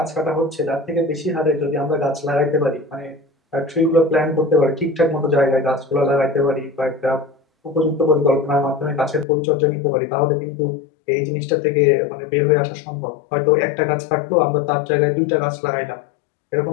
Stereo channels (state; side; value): drops out; right; at 9.2 s